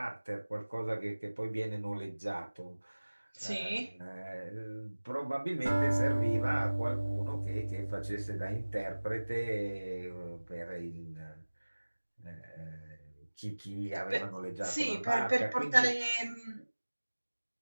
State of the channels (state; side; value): inverted; both; correlation -1.00